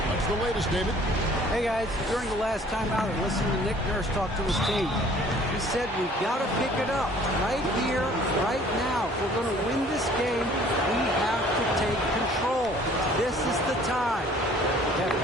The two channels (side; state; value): both; normal; correlation 0.54